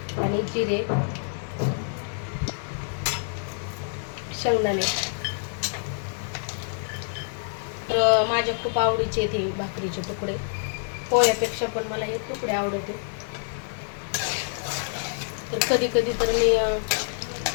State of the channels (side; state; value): right; silent; 60 dB below the other